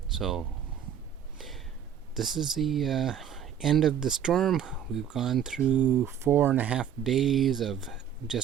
So this is the end of the storm. We've gone through 4.5 days of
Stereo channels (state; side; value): quieter; left; 8.8 dB